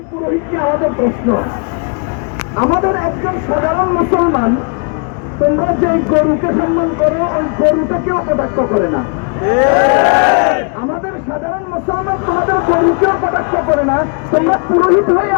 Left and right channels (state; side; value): quieter; right; 38.7 dB